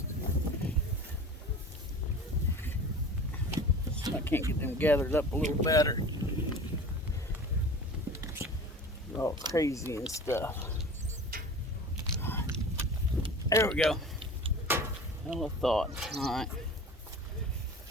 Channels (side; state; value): both; normal; correlation 0.38